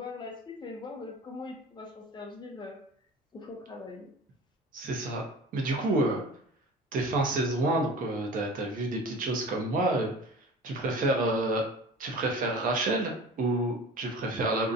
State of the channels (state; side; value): normal; both; correlation 0.39